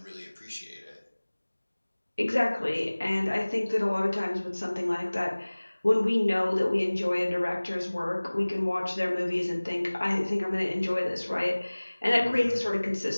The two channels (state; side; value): inverted; both; correlation -1.00